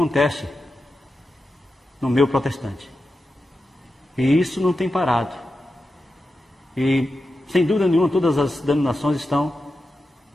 no meio protestante. E isso não tem parado. E, sem dúvida nenhuma, todas as denominações estão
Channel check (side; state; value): both; normal; correlation 0.90